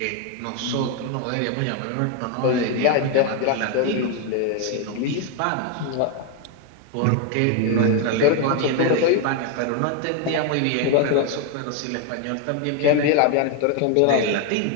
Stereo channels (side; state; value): both; different; correlation 0.01